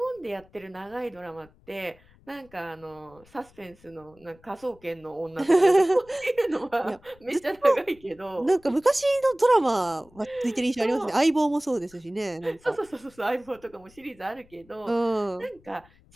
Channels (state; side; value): noise; left; rumble, 28 dB below the sound